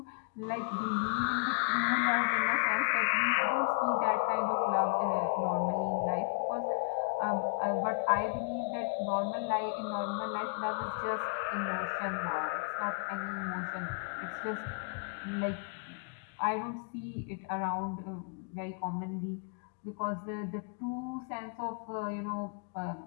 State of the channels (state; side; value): quieter; right; 34.6 dB